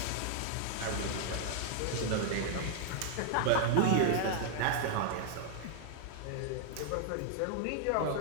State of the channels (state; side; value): different; both; correlation -0.01